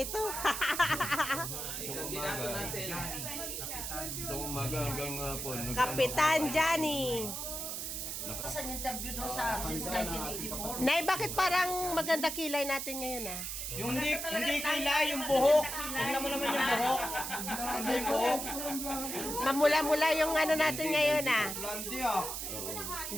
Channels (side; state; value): right; noise; hiss, 4 dB below the sound